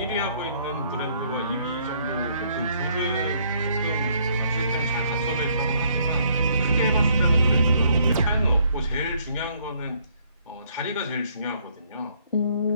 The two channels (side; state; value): both; inverted; correlation -0.66